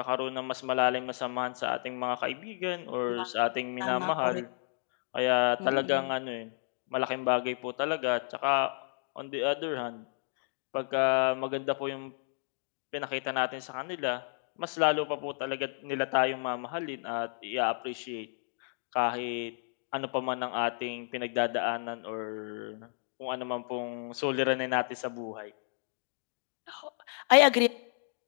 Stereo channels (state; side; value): silent; right; digital silence